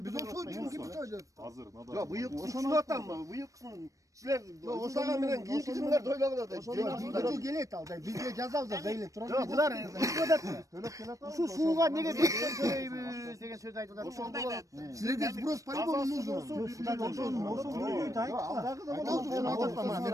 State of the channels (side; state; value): left; late; 0.16 ms